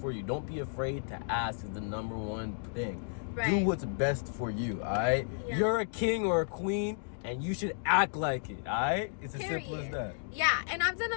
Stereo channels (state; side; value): silent; right; digital silence